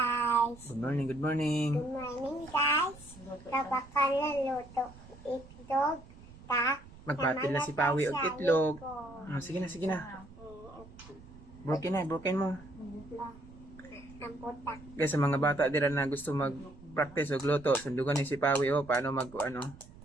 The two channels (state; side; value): noise; right; rumble, 19 dB below the sound